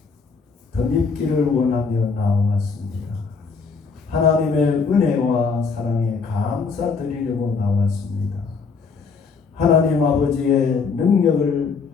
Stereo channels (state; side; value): quieter; right; 5.0 dB